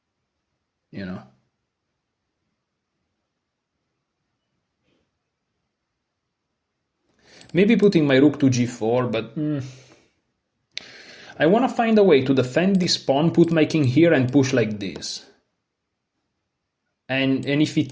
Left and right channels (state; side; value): identical; both; correlation 1.00